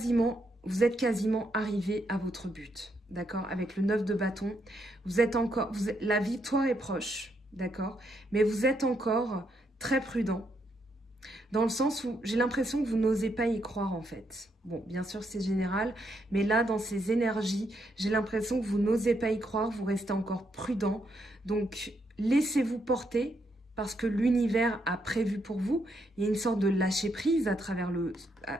êtes quasiment arrivé à votre but, d'accord? Avec le 9 de bâton, la victoire est proche, d'accord? Mais vous êtes encore très prudent, dans le sens où j'ai l'impression que vous n'osez pas y croire en fait. Bon, bien sûr c'est général, mais là dans ces énergies, j'ai l'impression que vous n'osez pas y croire, vous restez encore prudent. Donc laissez-vous porter, parce que l'univers a prévu pour vous. Il y a une sorte de lâcher prise à travers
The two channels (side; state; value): both; normal; correlation 0.77